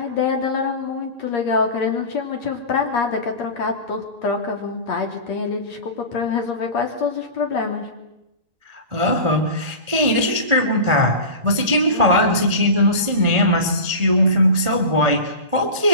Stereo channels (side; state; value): left; late; 1.4 ms